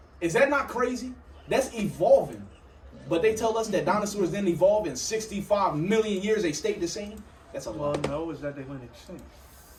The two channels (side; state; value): both; identical; correlation 1.00